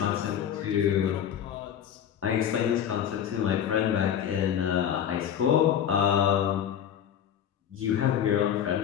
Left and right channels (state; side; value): quieter; right; 9.4 dB